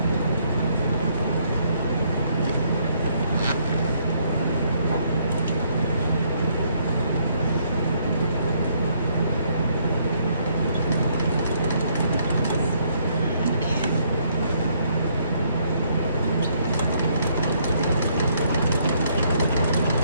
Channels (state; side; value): inverted; both; correlation -0.69